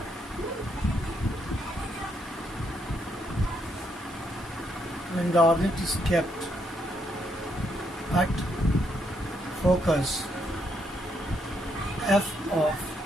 When the object is kept at focus f of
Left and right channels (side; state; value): both; normal; correlation 0.76